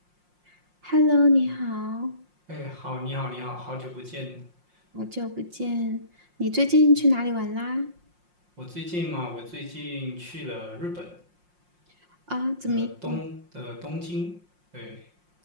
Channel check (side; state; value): left; late; 5.6 ms